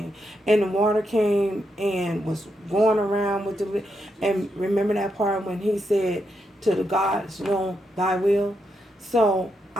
And the water came and was going around with the. And remember that part when he said, to the gods, thy will. So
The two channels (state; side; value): normal; both; correlation 0.82